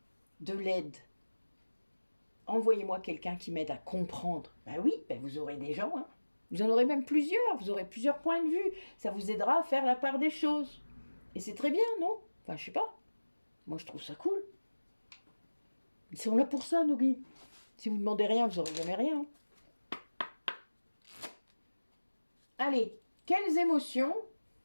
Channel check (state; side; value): inverted; both; correlation -1.00